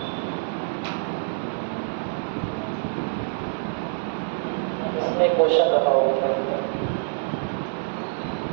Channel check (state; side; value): silent; left; 61 dB below the other